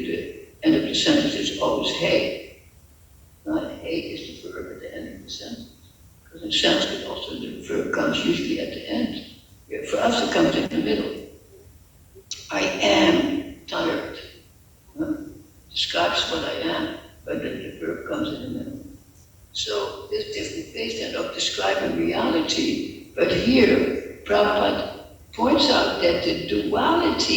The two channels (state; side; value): identical; both; correlation 1.00